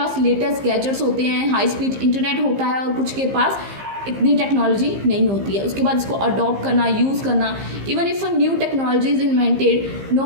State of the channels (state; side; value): late; left; 15 ms